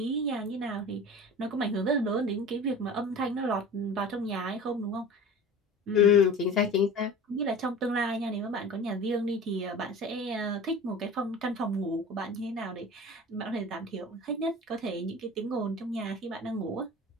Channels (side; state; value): both; normal; correlation 0.37